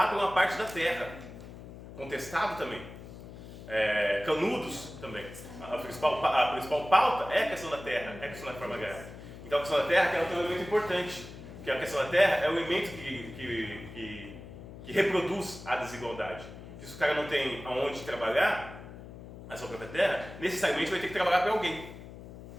por uma parte da terra, contestado também, canudos também. A principal pauta é a questão da terra, é a questão da reforma agrária. Então a questão da terra ela tem um elemento importante, que a questão da terra é o elemento que reproduz a desigualdade. Se o cara não tem aonde trabalhar a sua própria terra, necessariamente vai ter que trabalhar para alguém,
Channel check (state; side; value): noise; left; hum, 14 dB below the sound